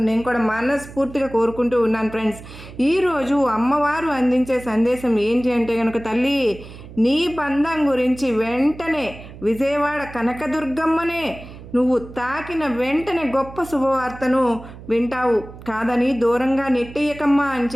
నేను కూడా మనస్ఫూర్తిగా కోరుకుంటూ ఉన్నాను ఫ్రెండ్స్. ఈరోజు అమ్మవారు అందించే సందేశం ఏంటి అంటే కనుక, తల్లి నీ బంధం గురించి వెంటనే విజయవాడ కనకదుర్గమ్మనే నువ్వు తాకిన వెంటనే గొప్ప శుభవార్తను వింటావు, కాదని దూరంగా నెట్టేయకమ్మా అని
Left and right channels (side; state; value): right; noise; hum, 16 dB below the sound